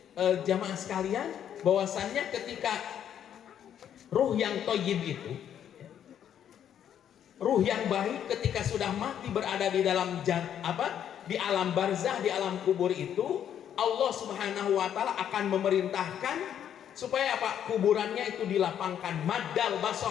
jamaah sekalian, bahwasannya ketika ruh yang thayyib itu, ruh yang baik ketika sudah mati berada di dalam di alam barzah, di alam kubur itu, Allah Subhanahu wa taala akan memerintahkan supaya apa? Kuburannya itu dilapangkan maddal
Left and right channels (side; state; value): right; quieter; 9.6 dB